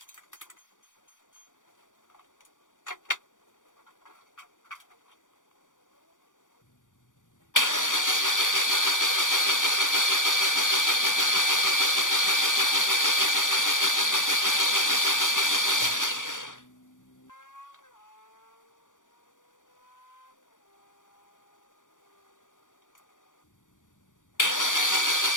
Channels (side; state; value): right; late; 0.87 ms